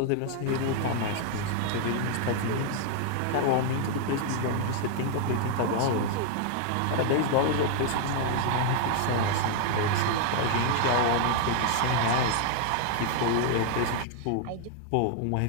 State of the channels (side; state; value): both; different; correlation 0.00